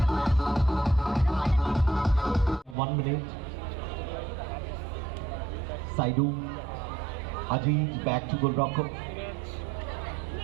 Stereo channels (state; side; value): drops out; left; at 2.8 s